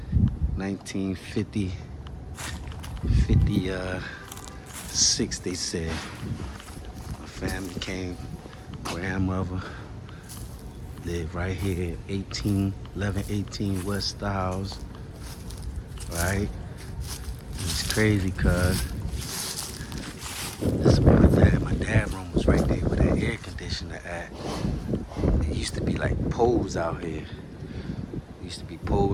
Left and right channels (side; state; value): both; identical; correlation 1.00